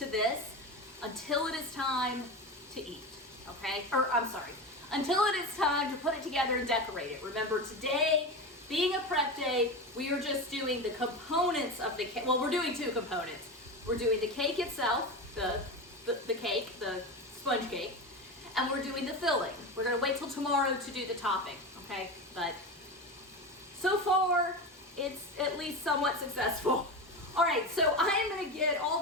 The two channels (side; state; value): both; normal; correlation 0.23